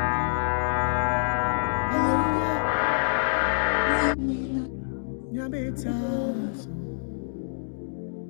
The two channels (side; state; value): right; silent; digital silence